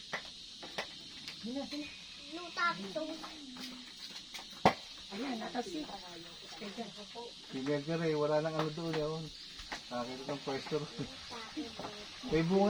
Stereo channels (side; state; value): both; identical; correlation 1.00